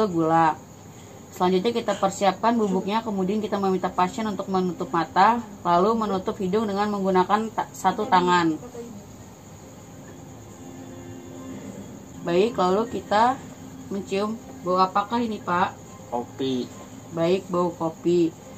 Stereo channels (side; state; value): both; identical; correlation 1.00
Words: gula. Selanjutnya kita persiapkan bubuknya, kemudian kita meminta pasien untuk menutup mata, lalu menutup hidung dengan menggunakan satu tangan. Baik, lalu kita mencium bau apakah ini, Pak? Kopi. Baik, bau kopi.